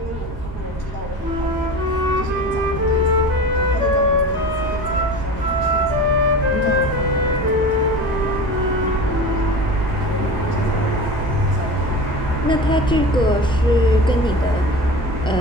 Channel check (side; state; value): both; normal; correlation 0.33